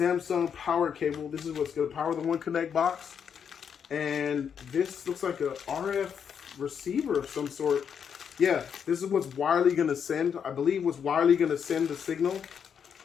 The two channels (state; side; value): quieter; right; 7.5 dB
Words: power cable. This is what's going to power the One Connect box. And this looks like a RF receiver of some sort. Yeah, this is what's wirely going to send, I believe what's wirely going to send the signal